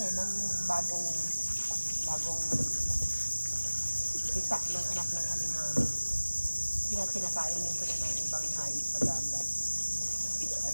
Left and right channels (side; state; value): both; inverted; correlation -1.00